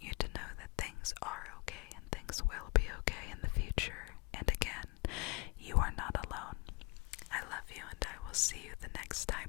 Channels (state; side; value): quieter; right; 27.0 dB